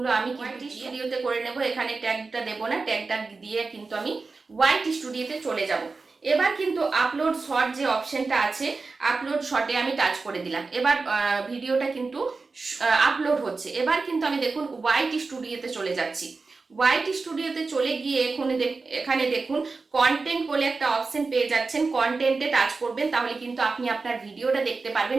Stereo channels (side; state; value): left; quieter; 4.1 dB